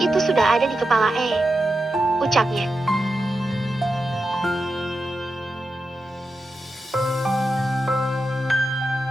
Itu sudah ada di kepala ucapnya.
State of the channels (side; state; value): both; normal; correlation 0.90